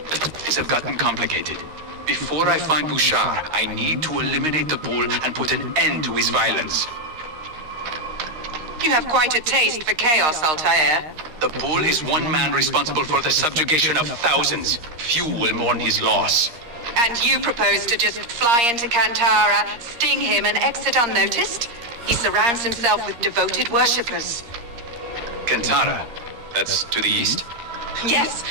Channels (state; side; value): late; left; 13 ms